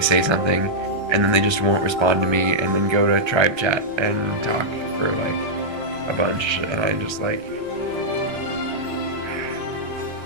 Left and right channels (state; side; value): late; left; 1.3 ms